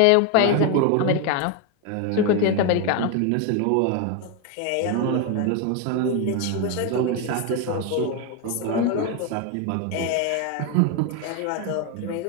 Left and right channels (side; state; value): both; different; correlation 0.01